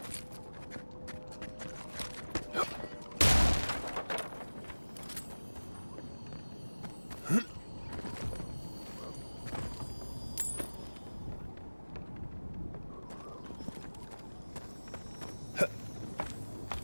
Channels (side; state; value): both; inverted; correlation -1.00